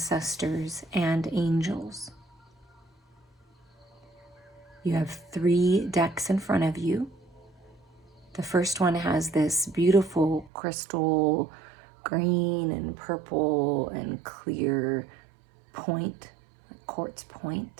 and angels. You have 3 decks in front of you. The first one has this beautiful crystal green and purple and clear point, quartz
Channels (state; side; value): drops out; left; at 10.5 s